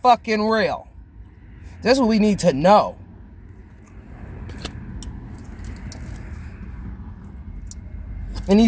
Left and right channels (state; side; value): identical; both; correlation 1.00